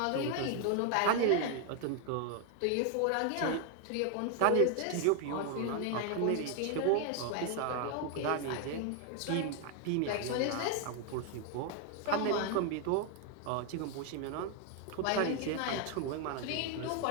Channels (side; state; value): both; different; correlation 0.00